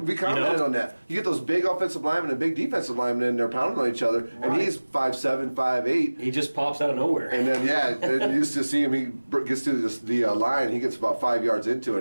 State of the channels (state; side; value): inverted; both; correlation -1.00